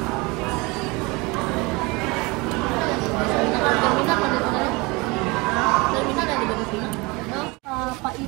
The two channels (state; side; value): quieter; left; 25.5 dB